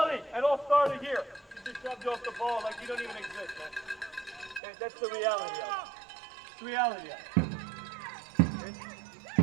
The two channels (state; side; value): drops out; left; at 4.6 s